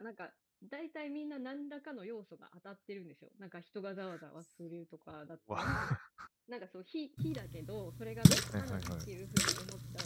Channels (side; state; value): both; identical; correlation 1.00